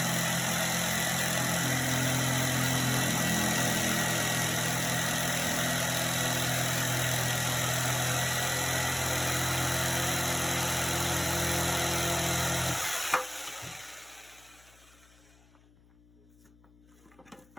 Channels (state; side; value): noise; left; hum, 29 dB below the sound